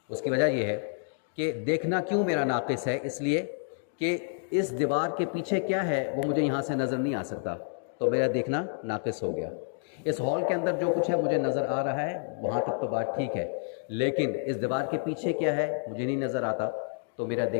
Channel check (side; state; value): right; silent; digital silence